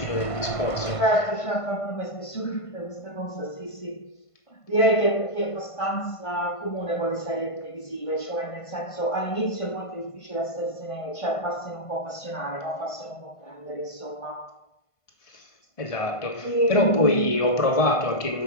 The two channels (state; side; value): late; right; 1.5 ms